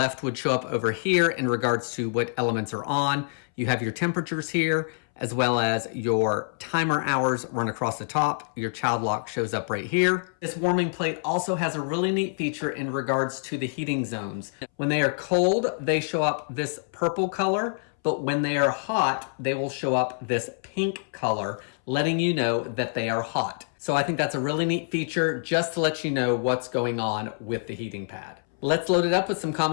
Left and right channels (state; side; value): silent; right; 61 dB below the other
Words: would show up over here in regards to what elements are on. You have your temperatures here, as well as your timer hours run across the top. Your child lock shows up right here. This warming plate also has a really neat feature in regards to the heating zones. When they are cold, they show up this purple color, but when they are hot, they will show up this pink color, letting you know that they are hot. So I think that's a really neat feature just to let you know what's going on with the heating pad. Let's load it up with some